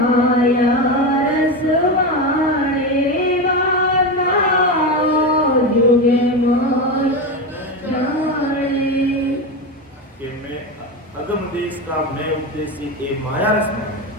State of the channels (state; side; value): normal; both; correlation 0.17